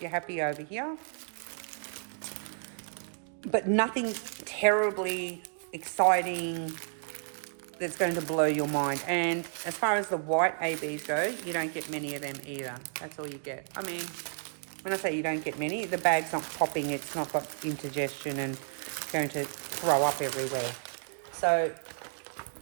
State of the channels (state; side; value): silent; left; 57 dB below the other